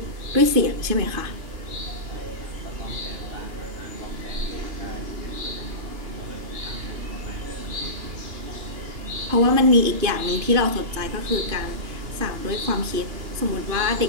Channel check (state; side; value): late; left; 2.9 ms